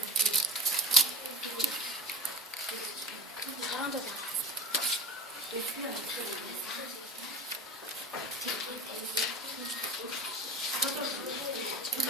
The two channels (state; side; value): normal; both; correlation 0.32